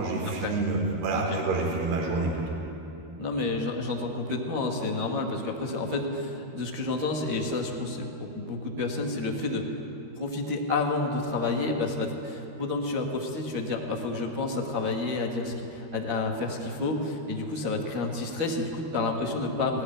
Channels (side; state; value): left; late; 13 ms